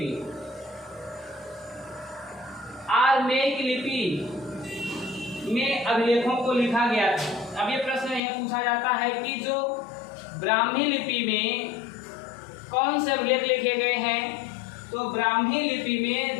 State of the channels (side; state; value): right; drops out; at 8.2 s